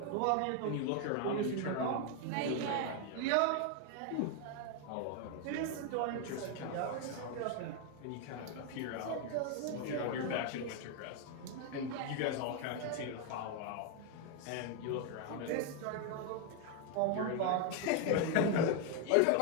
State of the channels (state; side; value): different; both; correlation 0.01